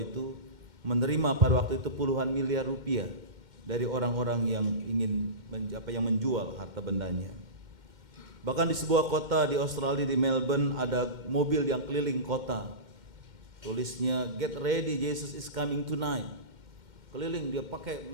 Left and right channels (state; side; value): late; left; 2.1 ms